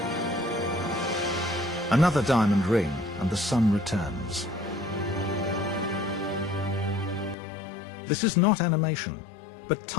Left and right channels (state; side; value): drops out; right; at 7.4 s